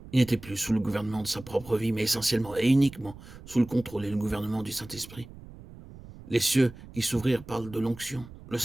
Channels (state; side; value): noise; right; rumble, 18 dB below the sound